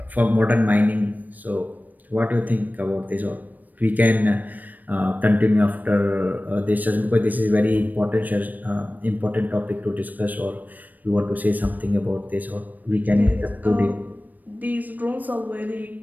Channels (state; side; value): late; left; 0.084 ms